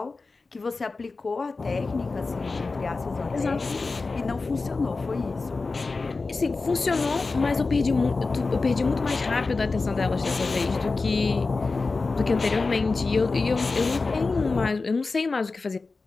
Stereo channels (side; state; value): right; quieter; 3.9 dB